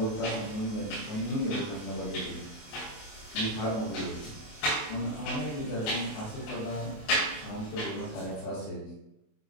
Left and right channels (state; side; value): late; right; 28 ms